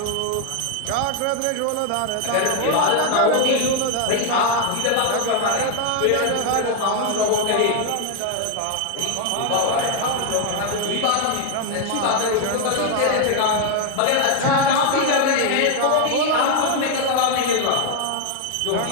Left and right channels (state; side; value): different; both; correlation 0.01